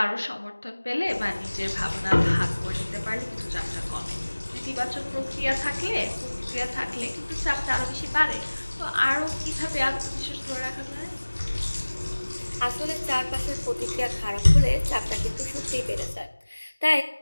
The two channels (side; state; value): both; inverted; correlation -1.00